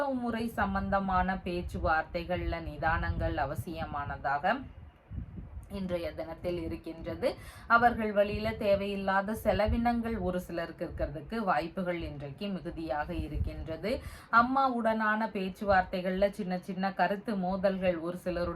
சம்பந்தமான பேச்சுவார்த்தைகள்ல நிதானங்கள் அவசியமானதாக இன்றைய தினத்தில் இருக்கின்றது. அவர்கள் வழியில தேவையில்லாத செலவினங்கள் ஒரு சிலருக்கு இருக்கிறதுக்கு வாய்ப்புகள் இன்றைக்கு மிகுதியாக இருக்கின்றது. அம்மாவுடனான பேச்சுவார்த்தைகள்ல சின்ன சின்ன கருத்து மோதல்கள் ஒரு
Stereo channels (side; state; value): both; identical; correlation 1.00